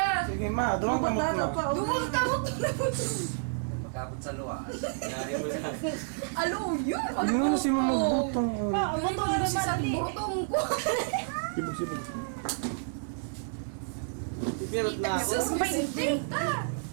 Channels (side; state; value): left; silent; digital silence